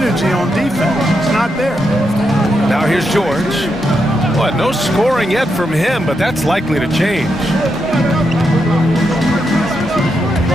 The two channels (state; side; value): normal; both; correlation 0.83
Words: on defense. It's not there. Now here's George. What, no scoring yet from him, but that's likely to change.